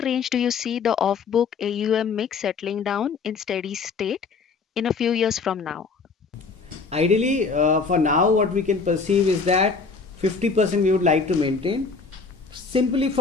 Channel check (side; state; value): right; quieter; 4.7 dB